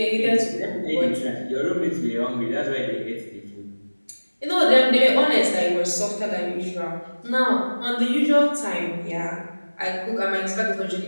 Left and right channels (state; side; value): inverted; both; correlation -1.00